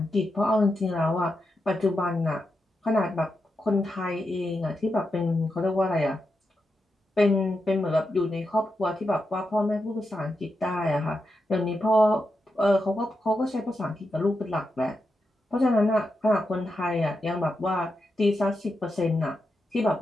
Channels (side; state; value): both; normal; correlation 0.87